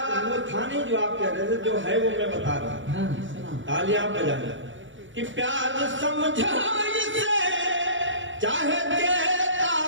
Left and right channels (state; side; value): late; left; 0.56 ms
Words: वो था नहीं जो आप कह रहे थे, जो है वो मैं बता रहा हूँ। हाँ, तालियां बजाना। कि प्यार समझो इसे चाहे